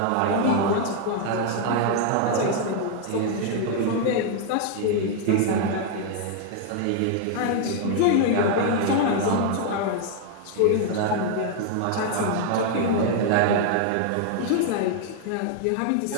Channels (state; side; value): different; both; correlation 0.00